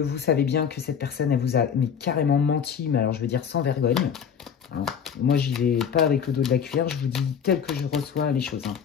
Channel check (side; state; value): right; quieter; 7.5 dB